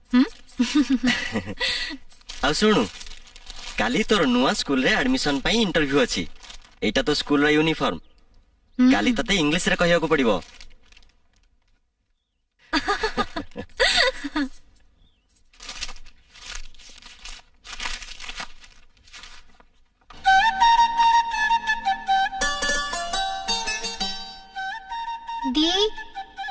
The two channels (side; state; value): both; identical; correlation 1.00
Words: आ सुनु काली तोर नुआ स्कूल रे एडमिशन पई इंटरव्यू अछि एटा तो स्कूल रा यूनिफॉर्म काली तते इंग्लिश रे कहिया को पड़िबो